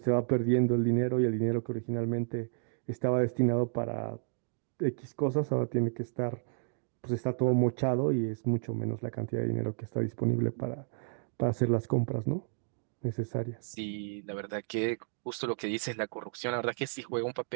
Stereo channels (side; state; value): left; silent; digital silence